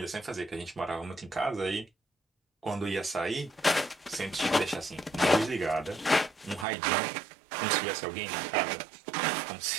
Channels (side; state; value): left; drops out; at 6.7 s